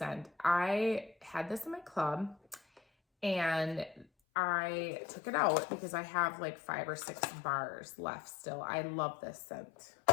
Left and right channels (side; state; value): right; drops out; at 4.0 s